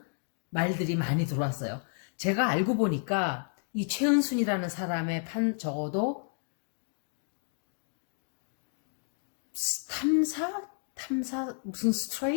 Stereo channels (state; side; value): silent; right; 57 dB below the other